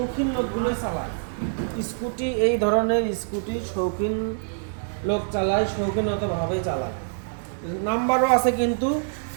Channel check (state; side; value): silent; left; digital silence